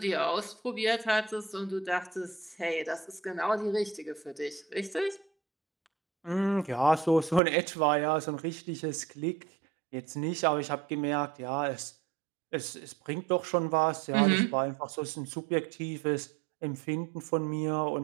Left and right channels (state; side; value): drops out; left; at 7.4 s